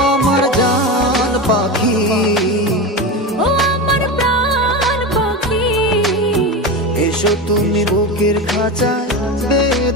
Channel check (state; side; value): normal; both; correlation 0.21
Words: আমার জান পাখি, ও আমার প্রাণ পাখি, এসো তুমি বুকের খাঁচায়